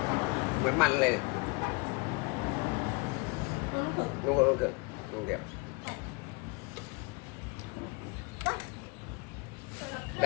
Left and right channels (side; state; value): right; quieter; 28.6 dB